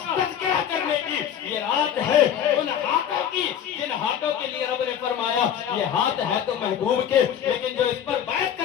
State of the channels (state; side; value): quieter; right; 9.2 dB